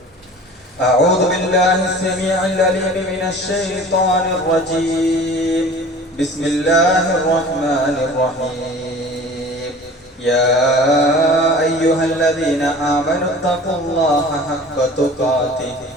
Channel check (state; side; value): normal; both; correlation 0.42